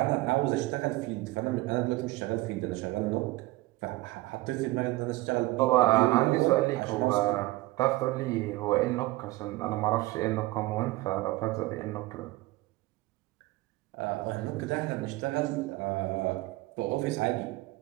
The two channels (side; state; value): left; quieter; 19.7 dB